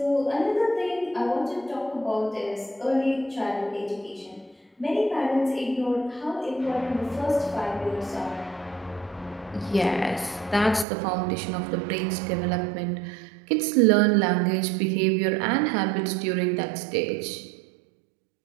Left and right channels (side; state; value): left; drops out; at 10.9 s